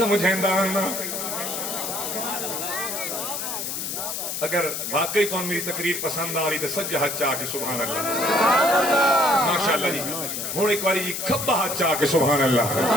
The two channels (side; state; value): left; noise; hiss, 4 dB below the sound